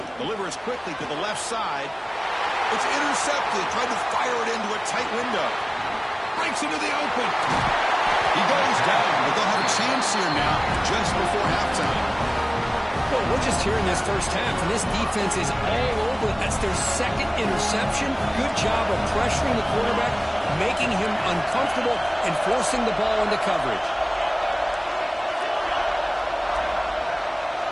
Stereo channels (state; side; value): identical; both; correlation 1.00